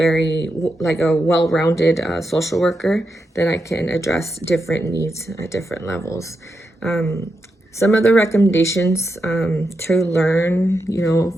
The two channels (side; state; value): both; normal; correlation 0.86